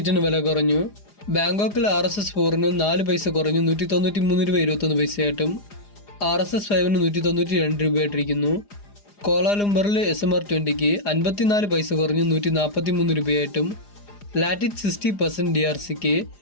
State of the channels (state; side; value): late; right; 4.9 ms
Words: വില കുറഞ്ഞു. ബാങ്കോക്കിൽ RSS 4-ന് 4 പൈസ കുറഞ്ഞു 193 രൂപ 21 പൈസയായിട്ടും RSS 5-ന് 192 രൂപയായിട്ടിരിക്കുന്നു. കോലാലംബറിൽ SMR 20-ക്ക് 54 പൈസ കുറഞ്ഞ് 143 രൂപയായിട്ടും ലാറ്റിറ്റ് 60% DRCക്ക്